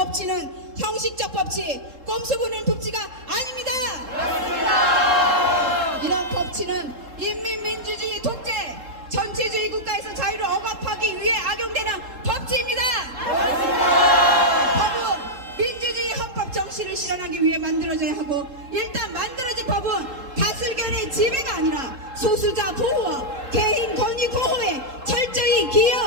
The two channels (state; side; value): late; left; 3.7 ms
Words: 형식적 법치, 꼼수 부는 법치가 아닙니다. 이런 법치는 인민민주주의 독재, 전체주의 국가에서 자유를 억압하기 위해 악용되는 법치입니다. 법은 민주주의 헌법 정신을 실현하기 위해 만들어져야 하고 일단 만들어진 법은 다수결의 지배가 아니라 소수자 보호와 개인 권익 보호에 철저히